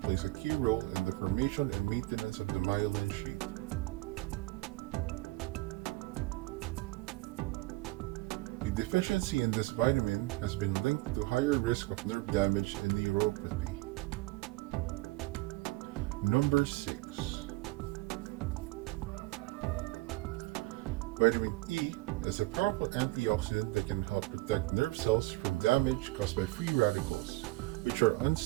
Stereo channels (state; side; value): quieter; left; 20.4 dB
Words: plays a key role in the formation and maintenance of the myelin sheath. The deficiency in this vitamin has been linked to higher risk of nerve damage and neuropathy. Number 6. Vitamin E is a powerful antioxidant that can help protect nerve cells from damage caused by free radicals, which are